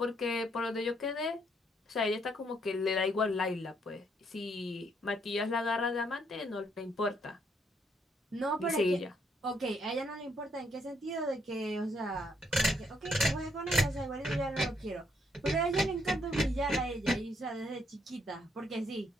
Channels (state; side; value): normal; both; correlation 0.72